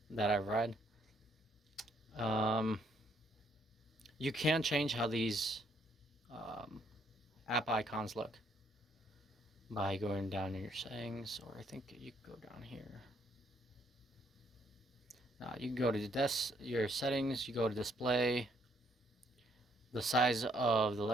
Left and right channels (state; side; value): normal; both; correlation 0.69